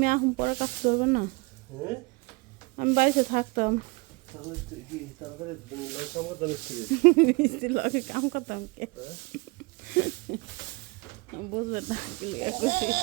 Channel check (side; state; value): left; quieter; 26.1 dB